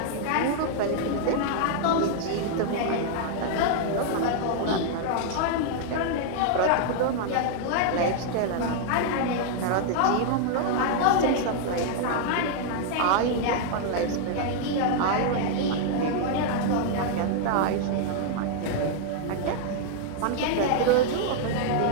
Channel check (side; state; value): both; different; correlation 0.00